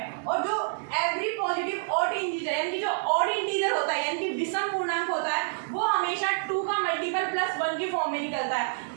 और जो एवरी पॉजिटिव ऑड इंटीजर यानी कि जो ऑड इंटीजर होता है यानी कि विषम पूर्णांक होता है वो हमेशा 2 का मल्टीपल प्लस 1 के फॉर्म में निकलता है,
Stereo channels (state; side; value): silent; left; 59 dB below the other